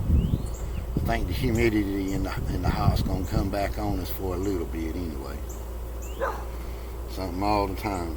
I think the humidity in the hot's gonna come back on us for a little bit anyway. Something all the time.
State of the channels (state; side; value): identical; both; correlation 1.00